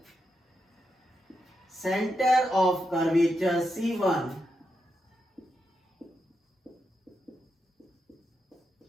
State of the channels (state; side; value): normal; both; correlation 0.85